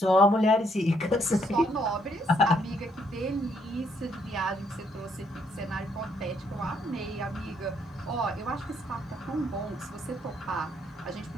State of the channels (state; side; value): normal; both; correlation 0.71